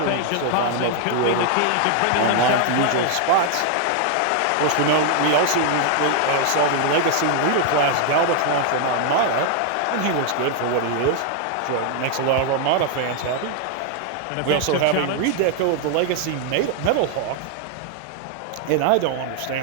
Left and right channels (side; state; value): both; different; correlation 0.00